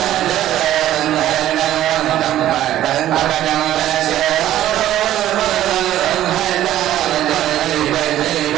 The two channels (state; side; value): quieter; left; 12.9 dB